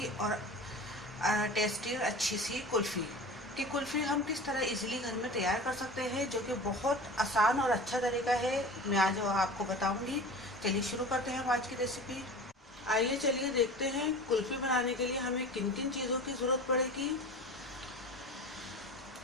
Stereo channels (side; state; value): both; normal; correlation 0.36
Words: और टेस्टी और अच्छी सी कुल्फ़ी। कि कुल्फ़ी हम किस तरह इजीली घर में तैयार कर सकते हैं, जो कि बहुत आसान और अच्छा तरीका है, मैं आज आपको बताऊंगी। चलिए शुरू करते हैं हम आज की रेसिपी। आइए चलिए देखते हैं कुल्फ़ी बनाने के लिए हमें किन किन चीज़ों की ज़रूरत पड़ेगी।